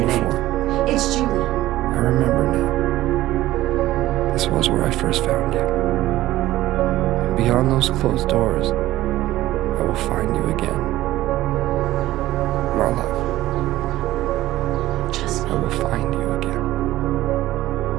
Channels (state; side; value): quieter; left; 15.7 dB